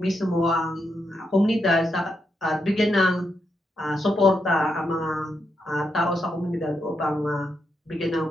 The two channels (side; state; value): both; normal; correlation 0.83